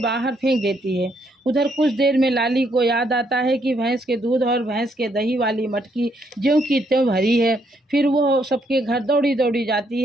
फेंक देती है। उधर कुछ देर में लाली को याद आता है कि भैंस के दूध और भैंस के दही वाली मटकी ज्यों की त्यों भरी है। फिर वो सबके घर दौड़ी दौड़ी जाती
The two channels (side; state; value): both; normal; correlation 0.73